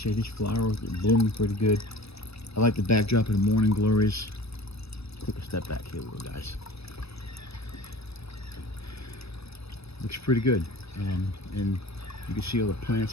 here. These flowers are blooming pretty good. I like the backdrop of the morning glories. Take a step back here, little guys. Looks pretty good. And you can see all the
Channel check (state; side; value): late; right; 0.78 ms